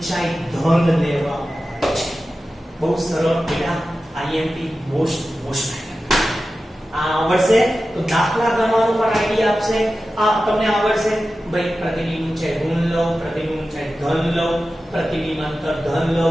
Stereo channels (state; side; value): normal; both; correlation 0.94